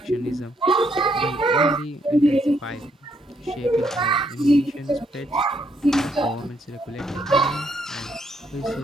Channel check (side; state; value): both; normal; correlation 0.73